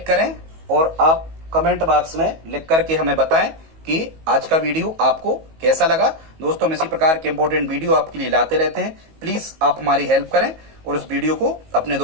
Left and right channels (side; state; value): left; late; 19 ms